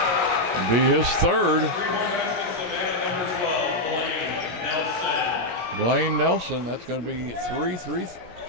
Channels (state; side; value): late; left; 17 ms